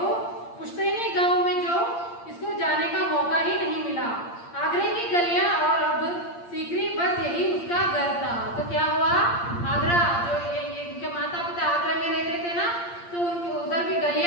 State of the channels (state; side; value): late; right; 8.7 ms